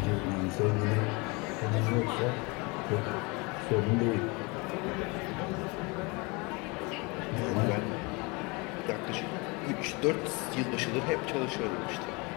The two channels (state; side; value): quieter; right; 27.9 dB